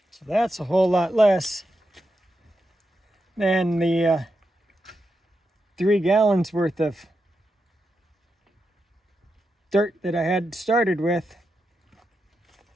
That's a whole lot less than the 3 gallons worth of dirt that I had started with,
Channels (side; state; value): both; normal; correlation 0.86